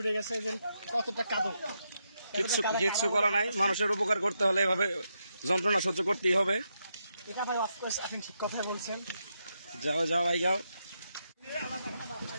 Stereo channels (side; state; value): both; inverted; correlation -0.82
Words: গেছে যে কতটা কাঁদো। কিচ্ছু করা নাই, মানুষের উপকার করতে হলে এভাবে যন্ত্রণা সহ্য করতেই হবে। এটা ভাই অফকোর্স আপনি ঠিক কথাই বলছেন। যাও যাও ভাই যাও,